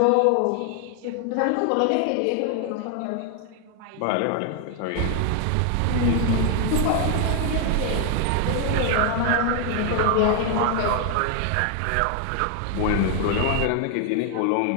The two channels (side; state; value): both; different; correlation 0.00